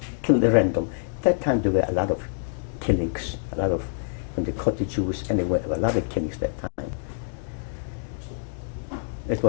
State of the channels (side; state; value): right; silent; digital silence